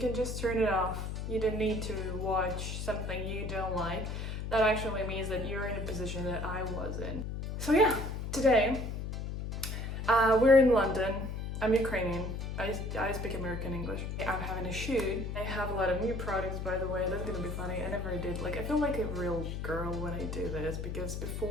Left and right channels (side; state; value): left; noise; hum, 4 dB below the sound